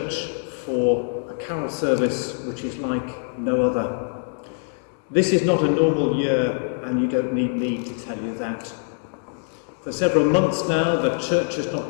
for a carol service which is like no other. This is not a normal year, and you don't need me to tell you that. For several months now, the church has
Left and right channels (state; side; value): silent; right; 63 dB below the other